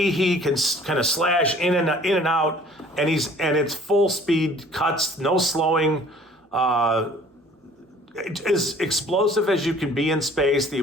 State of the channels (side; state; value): both; normal; correlation 0.53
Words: he can kind of slash in and out, and it's full speed cuts, no slowing. As explosive as you can be in space, the